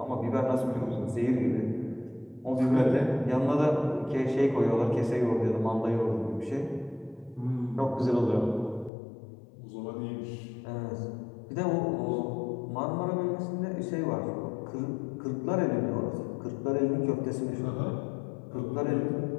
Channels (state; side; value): drops out; right; at 8.9 s